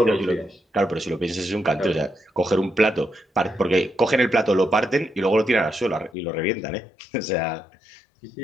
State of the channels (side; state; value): right; drops out; at 6.2 s